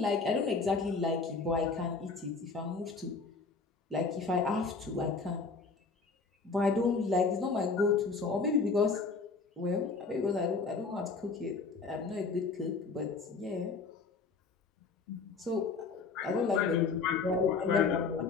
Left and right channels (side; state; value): right; quieter; 4.5 dB